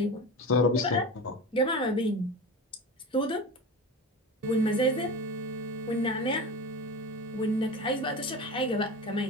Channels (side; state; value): both; normal; correlation 0.29